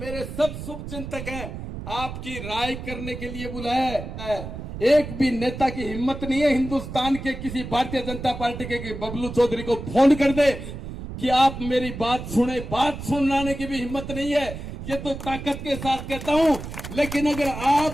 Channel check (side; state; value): right; noise; rumble, 9 dB below the sound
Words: सब शुभ चिंतक हैं, आपकी राय करने के लिए बुलाया है। एक भी नेता की हिम्मत नहीं है हिंदुस्तान के किसी भारतीय जनता पार्टी के बबलू चौधरी को फोन कर दे कि आप मेरी बात सुने। बात सुनाने की भी हिम्मत नहीं है। ये तो ताकत के साथ कहता हूं। लेकिन अगर